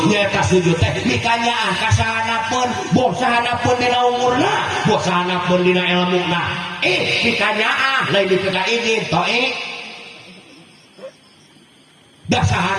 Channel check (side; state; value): both; identical; correlation 1.00